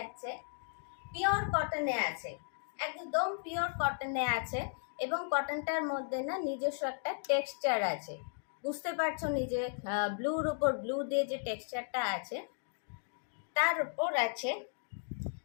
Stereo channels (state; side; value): silent; right; digital silence